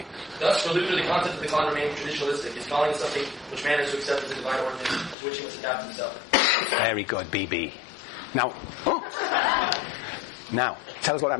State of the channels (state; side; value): drops out; right; at 5.2 s